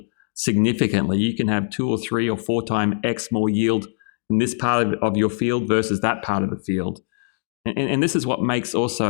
significantly. You can have 2 or 3 or 4 times X more yield in this part of your field versus that part of the field. And this is what makes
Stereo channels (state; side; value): silent; right; digital silence